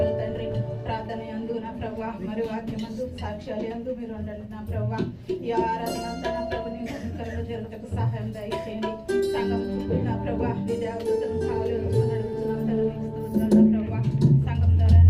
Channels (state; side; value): identical; both; correlation 1.00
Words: తండ్రి. ప్రార్థన యందు నా ప్రభా మరి వాక్యమందు సాక్ష్యాలు యందు మీరు ఉండండి నా ప్రభా. ఈ ఆరాధన అంతా నా ప్రభు నీ మహిమకరంగా జరుగుటకు సహాయం దయచేయండి. సంఘం చుట్టూ నా ప్రభా నీ దేవతలను కావాలి అడుగుతున్నాం తండ్రి స్తోత్రాలు నా ప్రభా. సంఘం ద్వారా